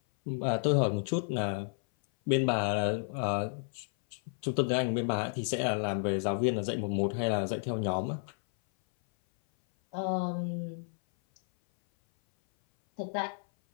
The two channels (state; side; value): silent; right; 57 dB below the other